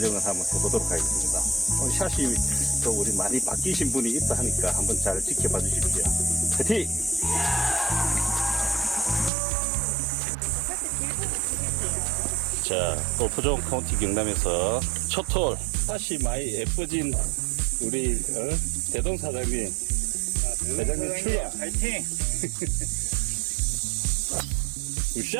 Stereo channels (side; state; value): left; drops out; at 9.3 s